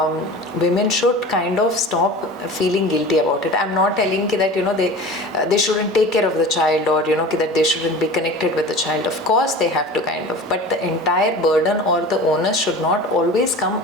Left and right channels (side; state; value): both; normal; correlation 0.37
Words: women should kind of stop feeling guilty about it. I'm not telling that they shouldn't take care of the child, or that they shouldn't be connected with the child. Of course they have to kind of, but the entire burden or the onus should not always come